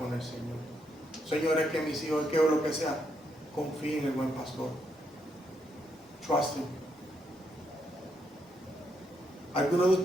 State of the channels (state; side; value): normal; both; correlation 0.78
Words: el Señor. Señor, es que mis hijos, es que o lo que sea, confía en el buen pastor. Trust him. ¿Alguno de